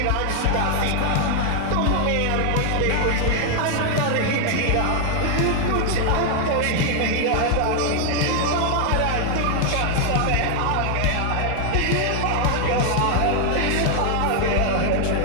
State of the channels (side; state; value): both; different; correlation 0.00